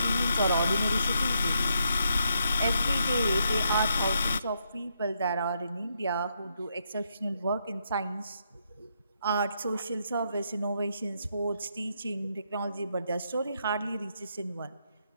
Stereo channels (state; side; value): inverted; both; correlation -0.78